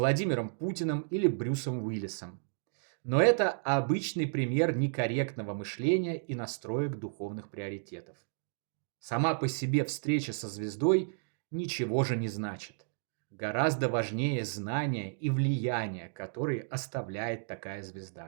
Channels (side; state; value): left; silent; digital silence